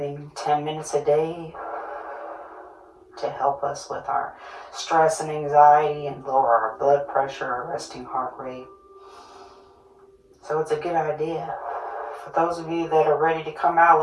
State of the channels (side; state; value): both; identical; correlation 1.00